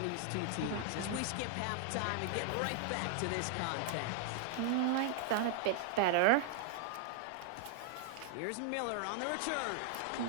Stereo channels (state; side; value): different; both; correlation 0.00